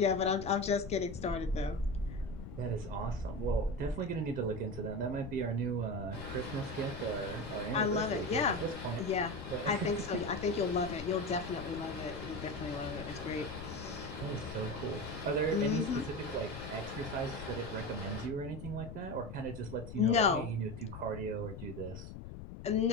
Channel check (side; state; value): left; noise; rumble, 10 dB below the sound